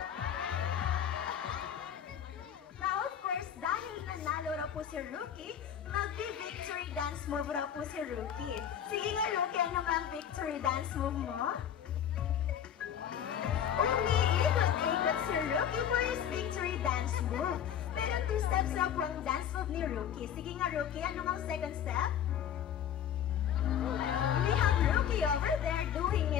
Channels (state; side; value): quieter; right; 9.2 dB